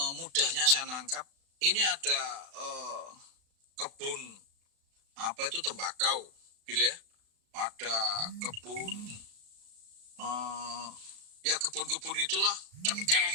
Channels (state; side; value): late; left; 36 ms